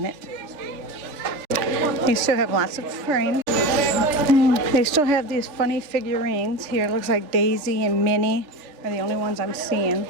it. They still have lots of frames. They still have these funny figurines here. Looks like Daisy and Minnie are the only ones I'm seeing.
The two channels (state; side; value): late; left; 3.4 ms